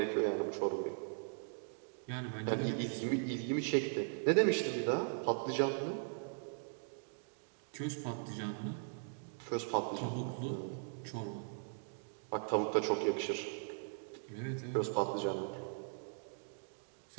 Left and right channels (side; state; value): left; silent; digital silence